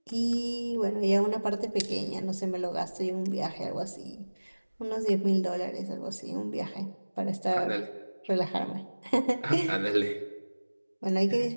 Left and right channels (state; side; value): inverted; both; correlation -1.00